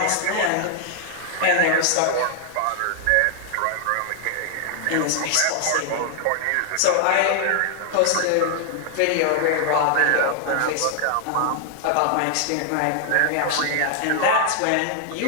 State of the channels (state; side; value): different; both; correlation 0.00